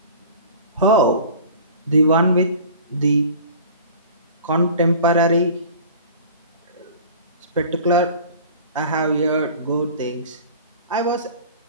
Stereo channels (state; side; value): inverted; both; correlation -0.42